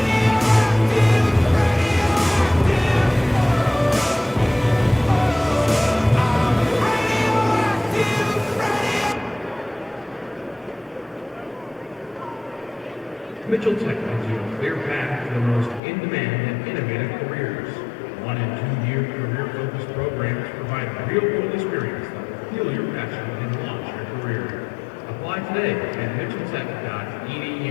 Mitchell Tech gives you a clear path to the most in-demand and innovative careers. 1 and 2 year career-focused programs provide real-world experience that will fuel your passion and launch your career. Apply today at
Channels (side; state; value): right; drops out; at 15.8 s